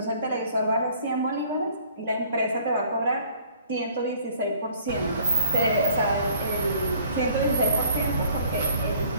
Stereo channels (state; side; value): inverted; both; correlation -0.55